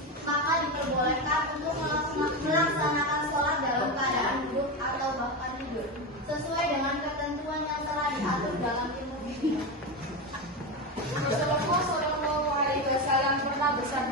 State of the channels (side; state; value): both; normal; correlation 0.16